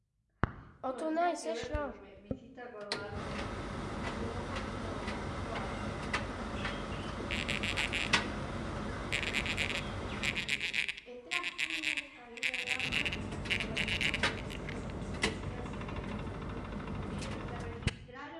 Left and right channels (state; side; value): identical; both; correlation 1.00